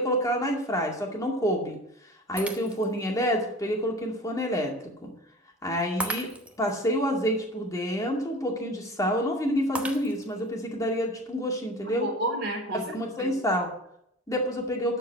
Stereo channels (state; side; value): normal; both; correlation 0.37